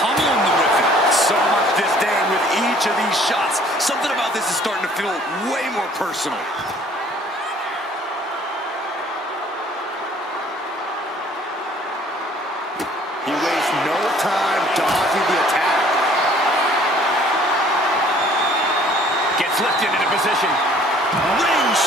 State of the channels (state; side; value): normal; both; correlation 0.56